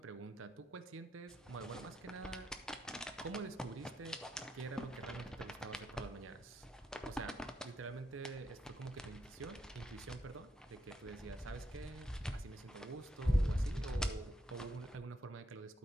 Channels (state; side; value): normal; both; correlation 0.80